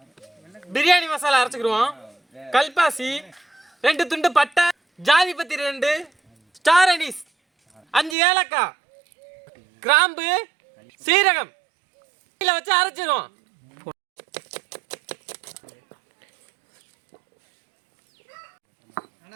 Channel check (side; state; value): left; drops out; at 8.2 s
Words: பிரியாணி மசாலா அரைச்சுக்கிடுவோம். கல்பாசி 2 துண்டு பட்டை, ஜாதி பத்தி 2, ஸ்டார் அனீஸ் 5 ஏலக்காய், கிராம்பு, சீரகம் வச்சு அரைச்சிருவோம்.